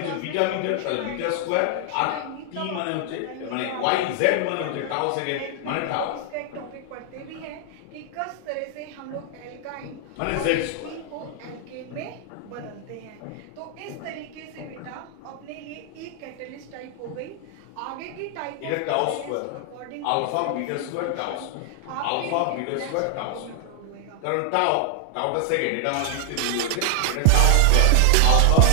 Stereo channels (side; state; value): both; different; correlation 0.00